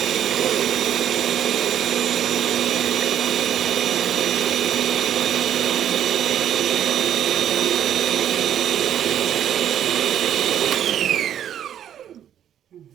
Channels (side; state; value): left; quieter; 10.1 dB